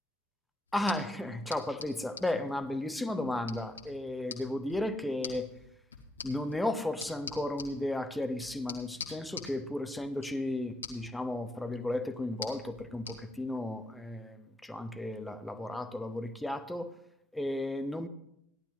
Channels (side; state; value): both; normal; correlation 0.80